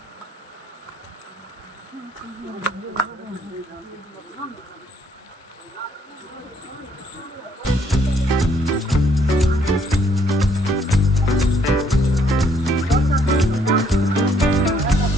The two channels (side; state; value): both; normal; correlation 0.68